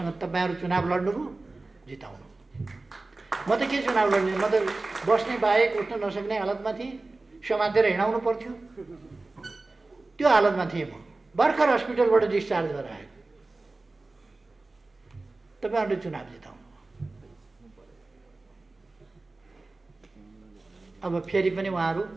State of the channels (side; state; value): left; quieter; 3.3 dB